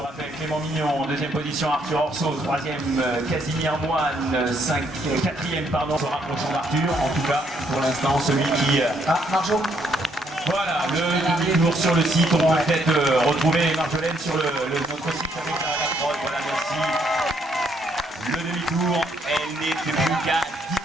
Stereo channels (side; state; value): both; normal; correlation 0.71